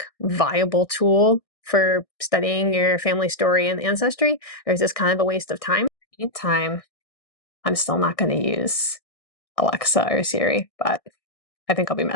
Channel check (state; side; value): late; right; 1.6 ms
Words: viable tool for studying your family story and ancestry, or is this kind of a waste of time? Meantime, I'm still not going to use Alexa or Siri, but I think I'll be